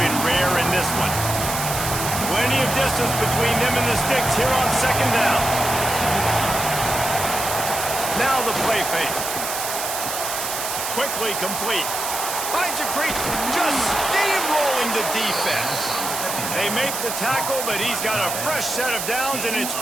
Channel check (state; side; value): noise; right; hiss, 4 dB below the sound